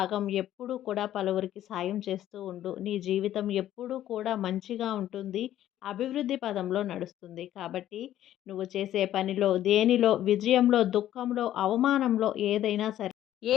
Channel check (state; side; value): quieter; right; 12.4 dB